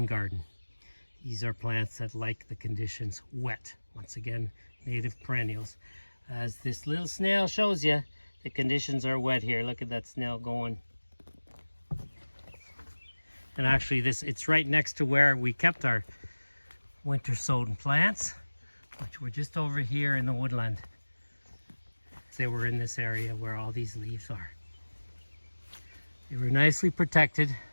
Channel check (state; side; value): inverted; both; correlation -1.00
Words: garden. These are plants that like the conditions wet. Once again, native perennials. As this little snail shows you, the conditions are wet here. Look at that snail going. And actually, it's right next to where we kept our winter sown plants, which were just over here in the woodland. They were in this area where all these leaves are. They were nicely protected,